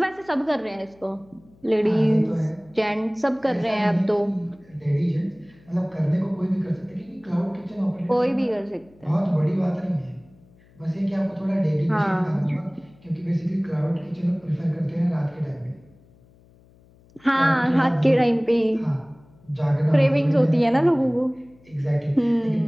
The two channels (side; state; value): left; noise; hum, 28 dB below the sound